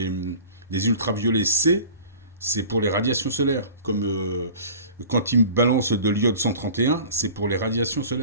ultraviolets C, c'est pour les radiations solaires. Comme quand ils balancent de l'iode 131, c'est pour les radiations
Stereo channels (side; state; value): both; inverted; correlation -0.41